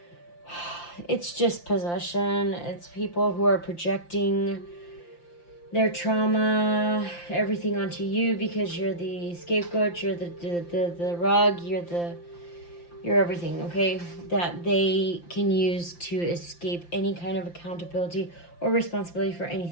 It's just possession. It's people who are projecting their trauma, everything onto you because you're the scapegoat, you're the rug, you're everything, okay? That they can use to escape any kind of accountability or responsibility for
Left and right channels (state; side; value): late; right; 5.8 ms